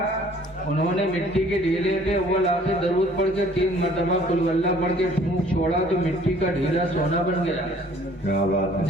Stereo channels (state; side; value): normal; both; correlation 0.56